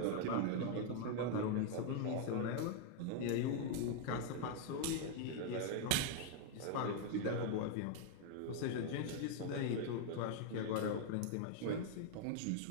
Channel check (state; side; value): different; both; correlation 0.00